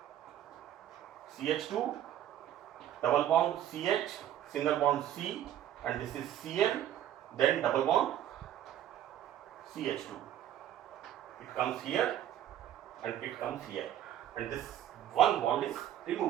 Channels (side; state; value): left; quieter; 11.5 dB